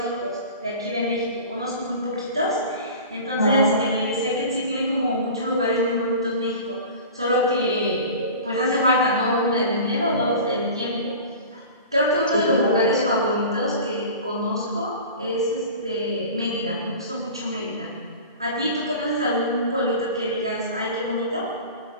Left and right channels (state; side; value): inverted; both; correlation -0.37